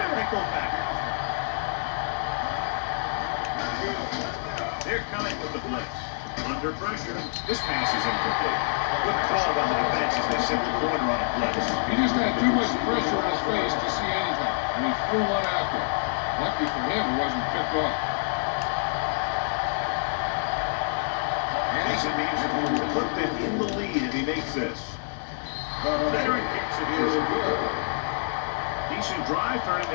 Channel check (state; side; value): silent; right; digital silence